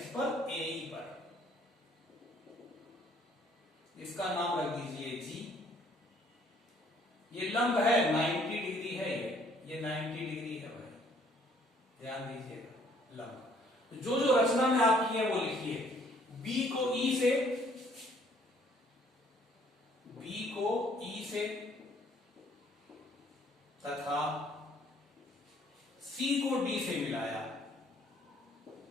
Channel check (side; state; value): both; normal; correlation 0.61